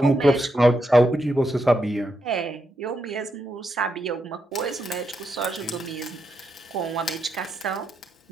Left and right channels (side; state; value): both; normal; correlation 0.82